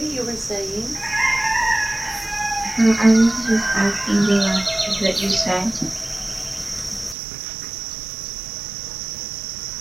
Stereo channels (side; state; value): left; drops out; at 7.2 s